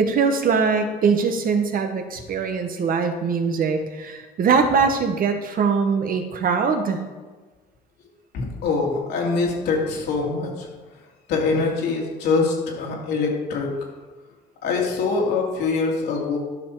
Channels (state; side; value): normal; both; correlation 0.33